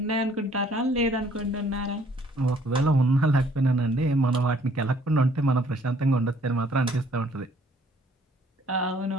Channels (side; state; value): both; normal; correlation 0.61